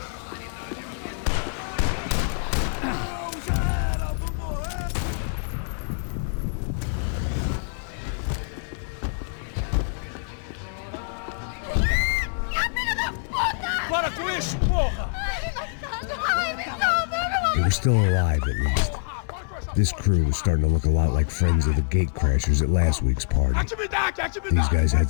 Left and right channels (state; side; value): silent; right; 62 dB below the other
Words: They were still alive, at least. This crew was starting to look a lot like friends of the gatecrashers at last week's party. These guys had